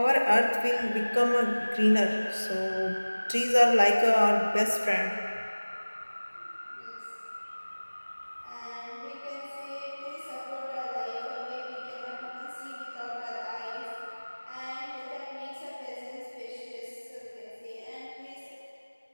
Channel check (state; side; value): inverted; both; correlation -1.00